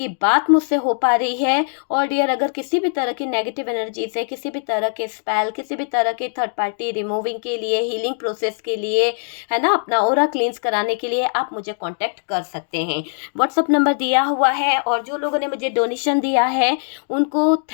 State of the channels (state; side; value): silent; right; digital silence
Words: बात मुझसे हो पा रही है। और डियर अगर किसी भी तरह की नेगेटिव एनर्जी से, किसी भी तरह के स्पेल, किसी भी तरह के थर्ड पार्टी रिमूविंग के लिए, हीलिंग प्रोसेस के लिए, है ना, अपना ऑरा क्लींस कराने के लिए आप मुझे कॉन्टैक्ट कर सकते हैं। व्हाट्सअप नंबर दिया हुआ है। और जो लोगों ने मुझे डोनेशन दिया है उनको